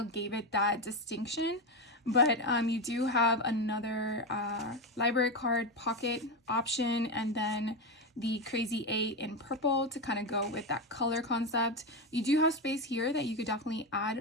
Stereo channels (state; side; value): normal; both; correlation 0.12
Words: gave it that distinction, but you do have another library card pocket option, and then the crazy 8 in purple to kind of go with that color concept. You do have space here that you could definitely